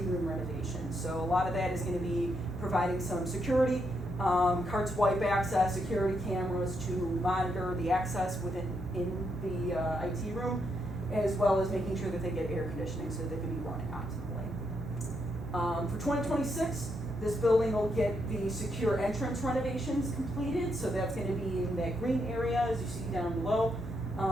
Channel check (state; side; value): normal; both; correlation 0.79